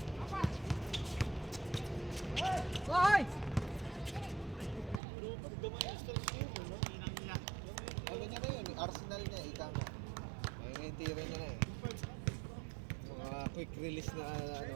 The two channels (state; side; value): drops out; left; at 5.0 s